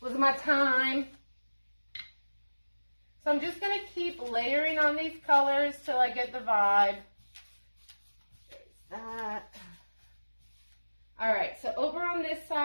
was my time. So I'm just going to keep layering on these colors till I get the vibe. There's that. All right, so over on this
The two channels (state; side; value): inverted; both; correlation -1.00